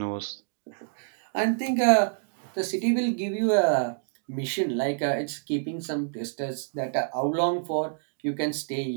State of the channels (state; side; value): silent; left; digital silence